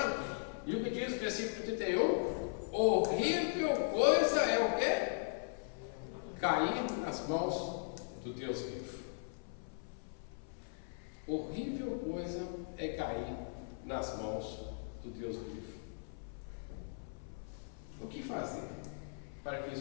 E o que diz o versículo 31? Horrível coisa é o quê? Cair nas mãos do Deus vivo. Horrível coisa é cair nas mãos do Deus vivo. O que fazer para que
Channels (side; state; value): right; silent; 52 dB below the other